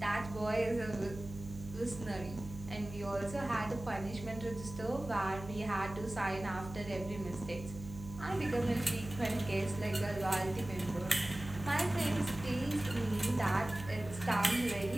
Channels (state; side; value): noise; right; hum, 12 dB below the sound